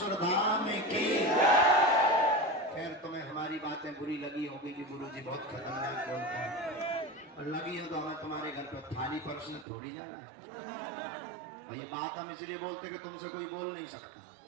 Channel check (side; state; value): left; drops out; at 9.7 s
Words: धाम की। खैर तुम्हें हमारी बातें बुरी लगी होगी कि गुरुजी बहुत खतरनाक बोलते हैं, और लगी हो तो हमें तुम्हारे घर पर थाली परसने थोड़ी जाना है। और ये बात हम इसलिए बोलते कि तुमसे कोई बोल नहीं सकता,